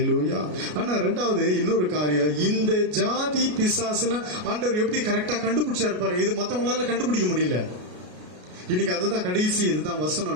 ஆனா ரெண்டாவது இன்னொரு காரியம், இந்த ஜாதி பிசாசுனா ஆண்டவர் எப்படி கரெக்டா கண்டுபிடிச்சாரு பாருங்க. இது மத்தவங்களால கண்டுபிடிக்க முடியல. இன்னைக்கு அதுதான் கடைசி, இதுதான்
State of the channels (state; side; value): late; left; 33 ms